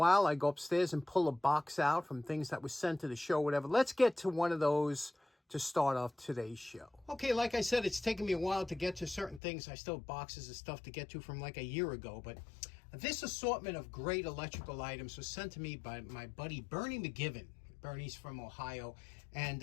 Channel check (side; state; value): right; drops out; at 9.4 s